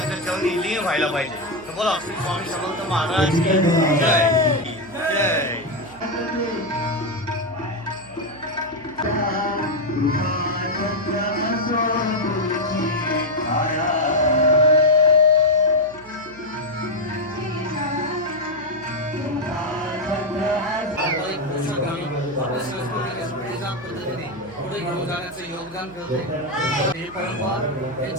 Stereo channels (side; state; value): right; noise; hum, 23 dB below the sound